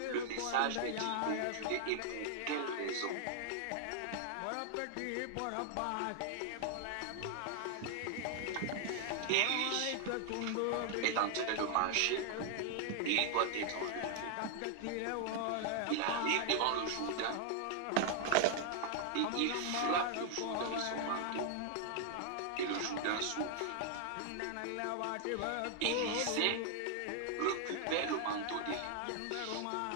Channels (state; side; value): different; both; correlation 0.00